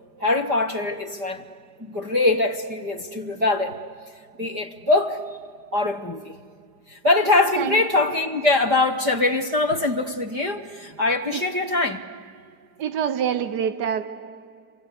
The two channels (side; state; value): left; late; 5.0 ms